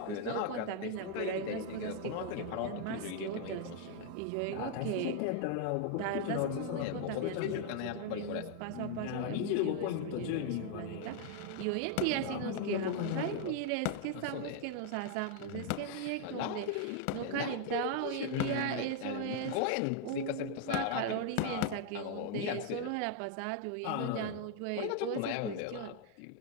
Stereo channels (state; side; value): different; both; correlation 0.00